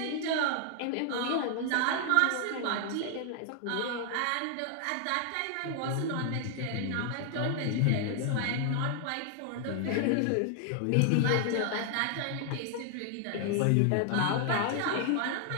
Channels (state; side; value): different; both; correlation 0.00